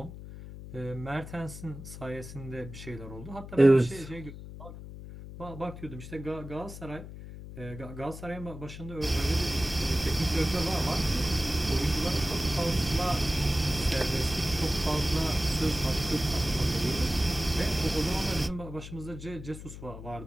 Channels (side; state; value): left; noise; hum, 12 dB below the sound